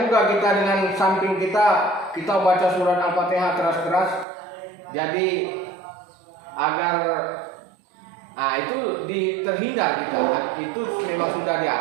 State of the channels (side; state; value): left; drops out; at 4.2 s